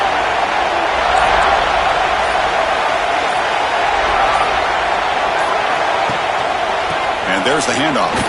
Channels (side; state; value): both; identical; correlation 1.00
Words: And there's the handoff.